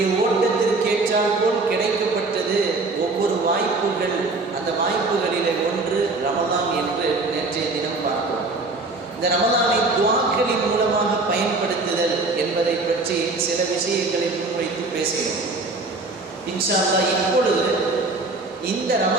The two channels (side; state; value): left; quieter; 3.4 dB